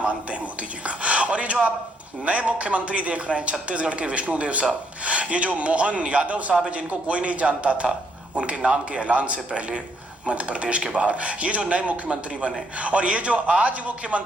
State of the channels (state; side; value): normal; both; correlation 0.72